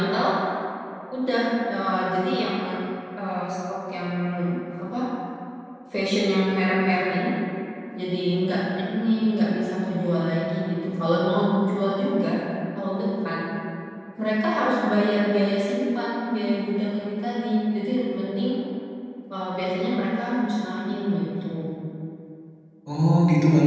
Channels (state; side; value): identical; both; correlation 1.00